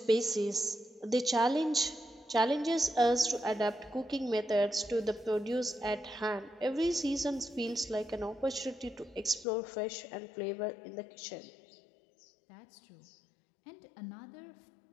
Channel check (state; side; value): drops out; right; at 9.5 s